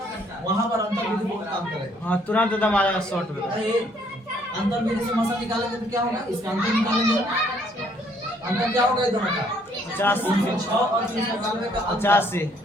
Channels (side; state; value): both; normal; correlation 0.65